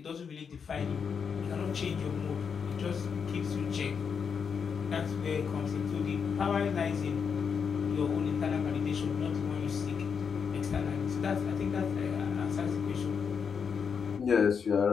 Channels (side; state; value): right; quieter; 6.4 dB